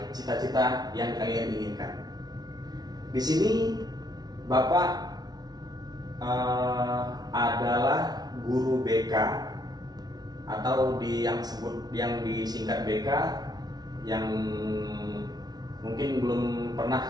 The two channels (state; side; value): late; left; 0.19 ms